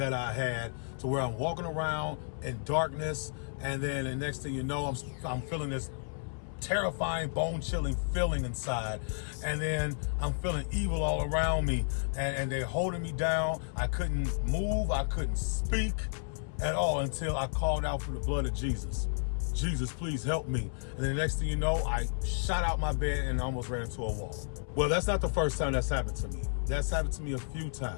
I had to where I'm walking around in darkness, and then the next thing you know, I'm feeling this terrifying, bone-chilling feeling inside, and then I'm feeling evil all around me, and they're holding me down. I couldn't move, I couldn't speak at all until I called out for the blood of Jesus. Jesus, please help me. And then the next thing you know, I shot out my bed and almost ran into a wall. Well, that's not the first time that's happened to me. That's happened to me a few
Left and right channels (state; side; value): silent; right; 56 dB below the other